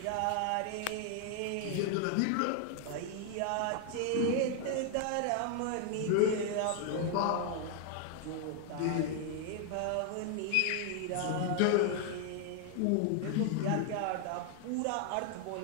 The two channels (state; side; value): different; both; correlation 0.00